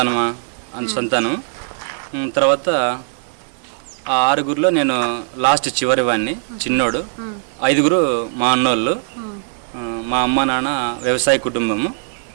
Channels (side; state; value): left; silent; digital silence